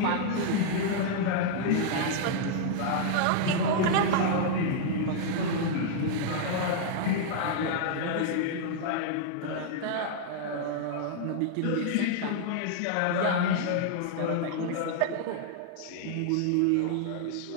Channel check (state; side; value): different; both; correlation -0.01